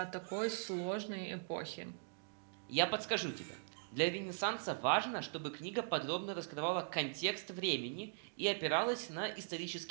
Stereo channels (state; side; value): silent; left; digital silence